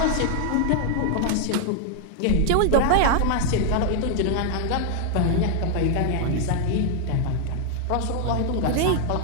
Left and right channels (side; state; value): both; different; correlation 0.00